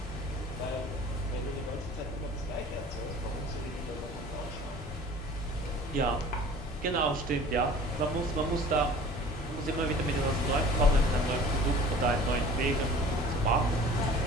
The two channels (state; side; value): normal; both; correlation 0.45